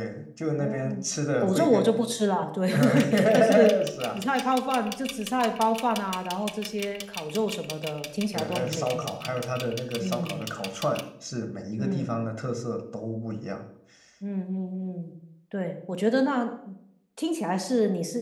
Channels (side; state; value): both; identical; correlation 1.00